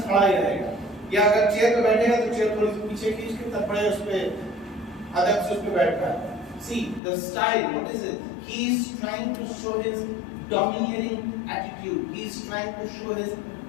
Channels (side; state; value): right; drops out; at 7.0 s